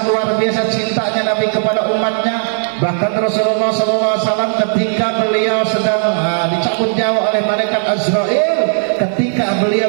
luar biasa cintanya Nabi kepada umatnya. Bahkan Rasulullah SAW ketika beliau sedang dicabut nyawa oleh malaikat Azrail, ketika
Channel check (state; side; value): silent; left; digital silence